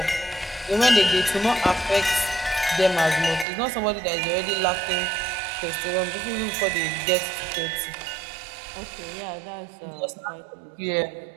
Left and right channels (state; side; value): drops out; left; at 3.5 s